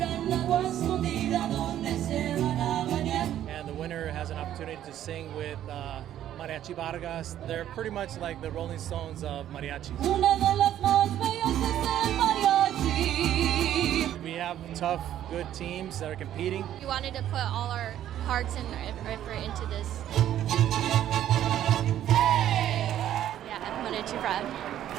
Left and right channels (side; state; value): left; quieter; 11.6 dB